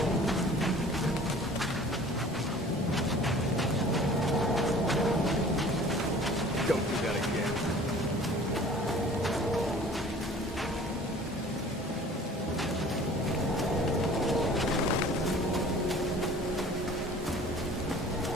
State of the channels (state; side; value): normal; both; correlation 0.48